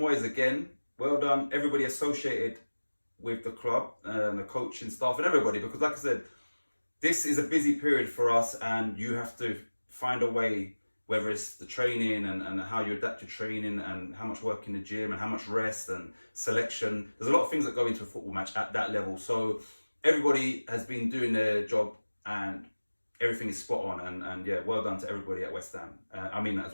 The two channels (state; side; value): inverted; both; correlation -1.00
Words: again, well done everybody associated with the club, and the coaching staff and everybody, because like I said, this is a busy period for us, and you have to find a way, whether it's the training and how you adapt your training and how much work in the gym and how much rest and selection. There's a lot of things that go into a football match at that level. So everybody has been doing their job and everything is spot on. And yeah, well done to everybody at West Ham. I mean that as